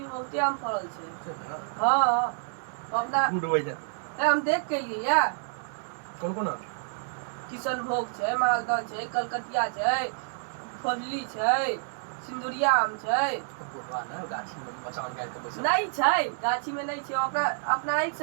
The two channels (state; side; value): silent; left; digital silence